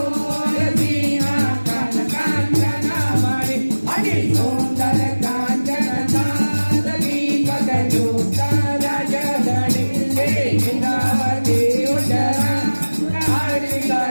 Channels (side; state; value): both; inverted; correlation -1.00